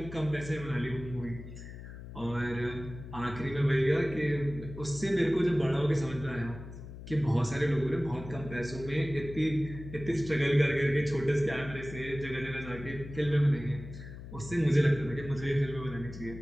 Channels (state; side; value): noise; left; hum, 12 dB below the sound